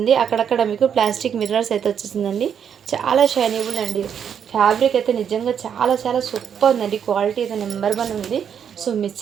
అక్కడక్కడ మీకు ప్లాస్టిక్ మిర్రర్స్ అయితే వచ్చేసిందండి. చాలా షైనబుల్ అండి. ఫ్యాబ్రిక్ అయితే నిజంగా చాలా చాలా సూపర్ ఉందండి. క్వాలిటీ అయితే నెంబర్ 1 ఉంది. సో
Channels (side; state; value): left; quieter; 8.1 dB